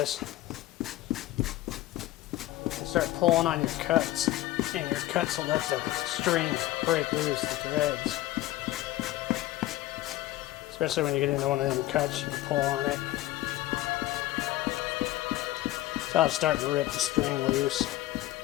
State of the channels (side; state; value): right; quieter; 16.0 dB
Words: and start pulling on your cuts, and your cuts will let the string break loose, the threads. Especially when you get into one of them cuts, you can pull on it. So it's starting to rip the string loose.